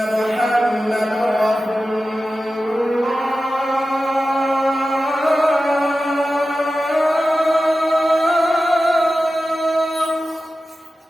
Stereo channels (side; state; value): both; normal; correlation 0.94